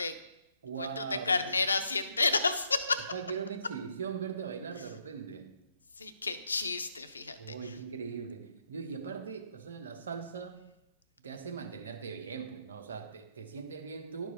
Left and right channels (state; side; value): inverted; both; correlation -0.74